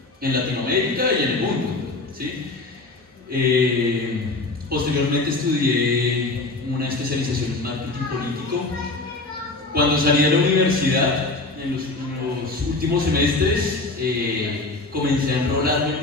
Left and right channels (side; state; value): right; quieter; 3.2 dB